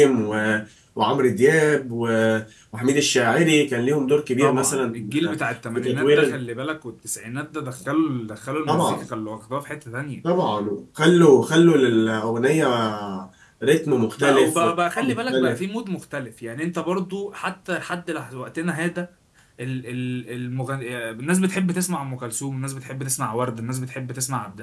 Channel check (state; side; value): identical; both; correlation 1.00